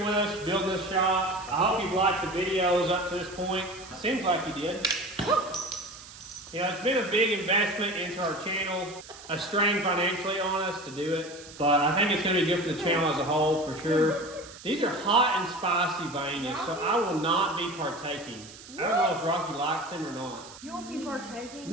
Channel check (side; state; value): right; noise; hiss, 17 dB below the sound